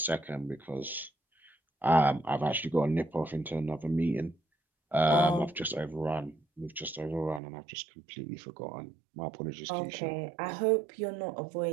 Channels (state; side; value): drops out; left; at 7.4 s